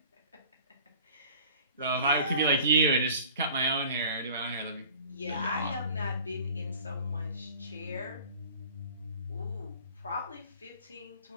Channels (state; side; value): inverted; both; correlation -0.47